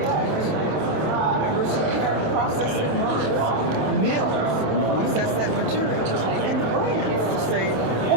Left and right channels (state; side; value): late; left; 27 ms